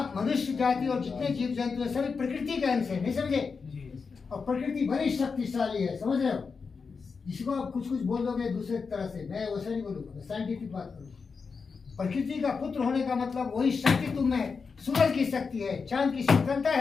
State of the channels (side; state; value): right; quieter; 5.1 dB